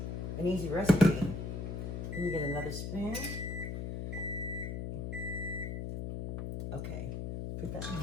an easy recipe. Let me get another spoon. Okay, put that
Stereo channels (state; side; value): noise; left; hum, 4 dB below the sound